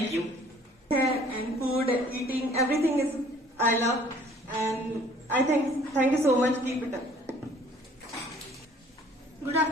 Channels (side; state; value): both; normal; correlation 0.55